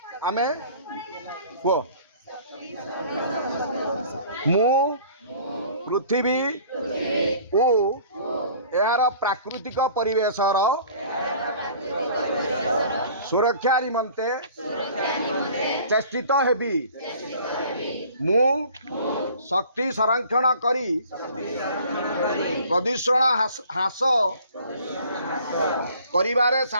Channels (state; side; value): inverted; both; correlation -0.50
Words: आमे को मु पृथ्वी ओ यार प्राकृतिक परिवेशर सुरक्षा निमंते चेष्टित हेबी मु शक्ति संरक्षण करी प्रदूषण ह्रास करिबारे